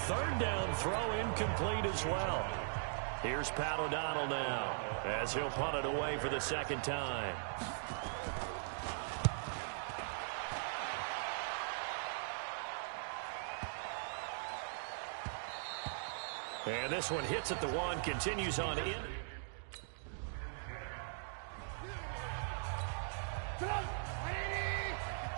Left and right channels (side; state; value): left; silent; digital silence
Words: 3rd down throw incomplete as well. Here's Pat O'Donnell now as he'll punt it away for the 2nd time. And this one hits at the 1, continues on in.